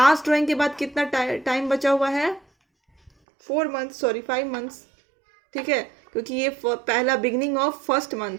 ड्राइंग के बाद कितना टाइम बचा हुआ है, 4 मंथ्स, सॉरी 5 मंथ्स। ठीक है, क्योंकि ये पहला बिगनिंग ऑफ फर्स्ट मंथ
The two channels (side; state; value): left; drops out; at 3.1 s